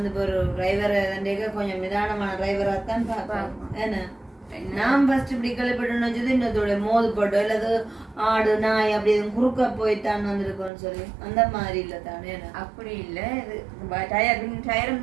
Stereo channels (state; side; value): drops out; left; at 10.7 s